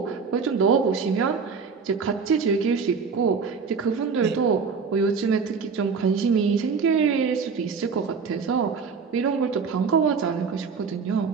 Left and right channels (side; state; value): left; quieter; 5.5 dB